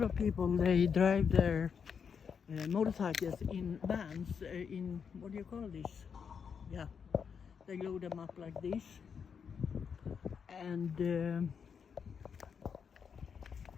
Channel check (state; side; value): quieter; right; 6.6 dB